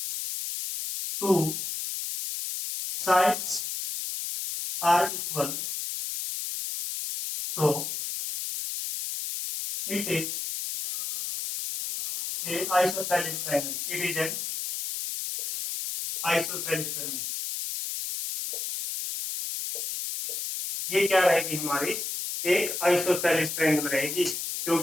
two sides are equal so it is a isosceles triangle. It is an isosceles triangle. ये क्या रहेगी हमारी एक आइसोसेलेस ट्रायंगल रहेगी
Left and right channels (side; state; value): left; noise; hiss, 4 dB below the sound